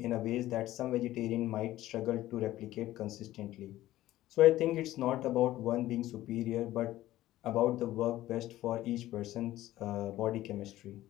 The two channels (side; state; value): right; quieter; 15.1 dB